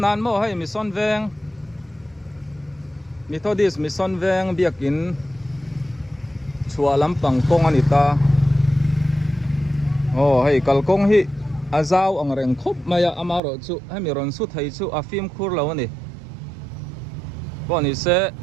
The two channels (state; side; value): drops out; left; at 13.4 s